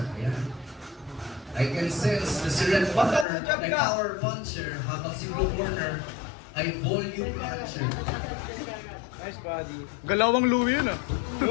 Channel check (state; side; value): drops out; right; at 3.2 s